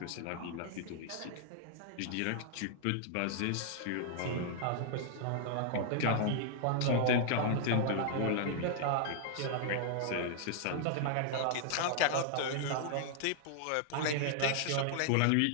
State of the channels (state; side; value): different; both; correlation -0.01